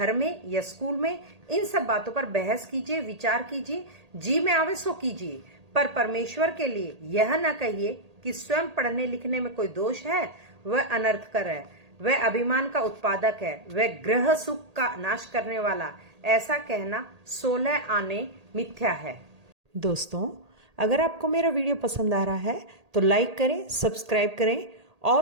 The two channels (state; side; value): late; left; 1.8 ms